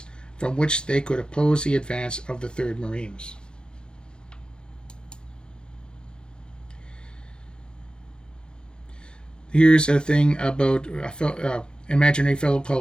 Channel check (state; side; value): late; right; 0.049 ms